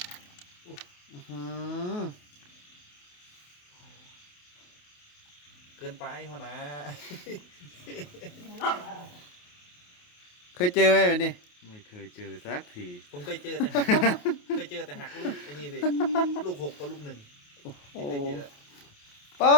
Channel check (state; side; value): late; right; 28 ms